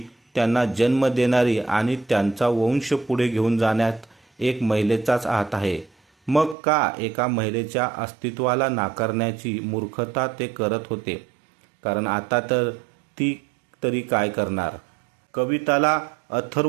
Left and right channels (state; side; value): drops out; left; at 6.6 s